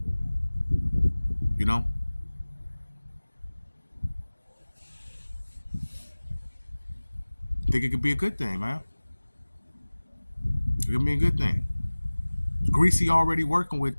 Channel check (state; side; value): inverted; both; correlation -1.00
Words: I think it could be a good thing, man. It could be a good thing. Greasy already working with